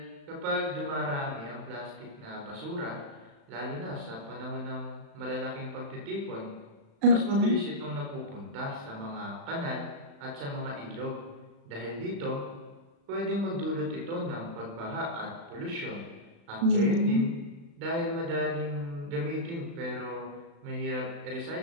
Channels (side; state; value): left; late; 35 ms